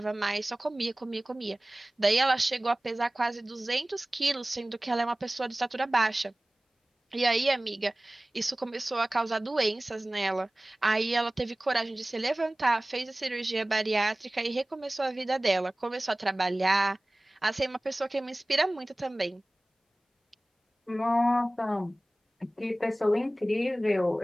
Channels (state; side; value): normal; both; correlation 0.98